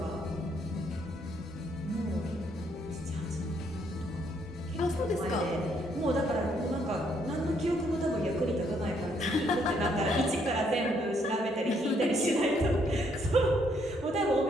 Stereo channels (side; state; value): both; normal; correlation 0.71